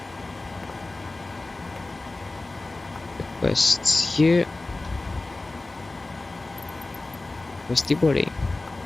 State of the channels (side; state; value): right; quieter; 3.1 dB